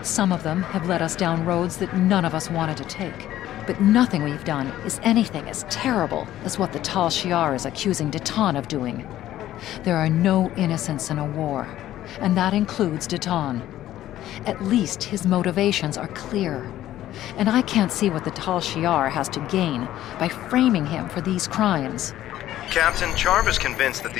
Some of them have led us down roads that none of us wanted to take. But nothing we've done is anything as terrible as what the Tal Shiar is accusing Deton of doing. There are no innocents in a war, and that includes Deton. At least his motivations are clear. And I can't see what the Tal Shiar has to gain by framing him for these crimes. Captain, Charva's convinced that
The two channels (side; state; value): right; quieter; 13.3 dB